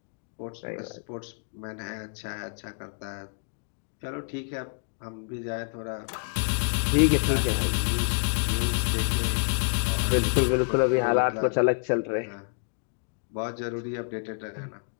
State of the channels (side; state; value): right; silent; 59 dB below the other